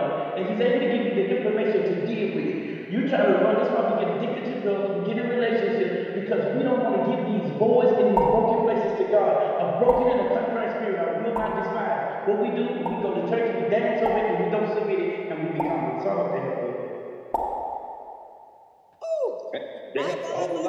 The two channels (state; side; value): identical; both; correlation 1.00